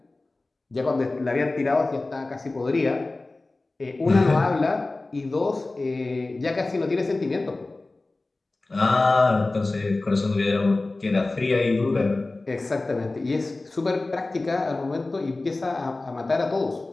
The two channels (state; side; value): quieter; right; 3.1 dB